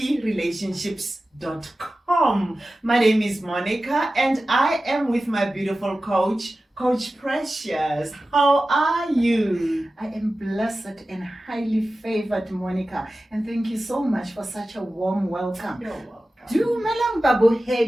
My name is Monica and I am with my beautiful coach, Coach Precious. How are you? I am blessed and highly favored, Monica, and thank you so much for such a warm welcome. You're welcome. Dumelang Babu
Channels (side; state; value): both; normal; correlation 0.95